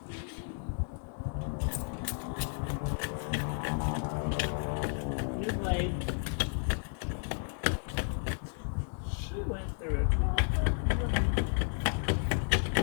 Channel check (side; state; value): right; silent; 56 dB below the other